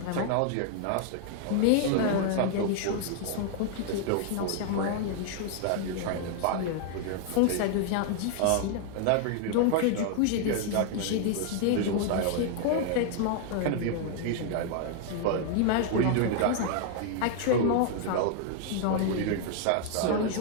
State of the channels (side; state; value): both; different; correlation 0.00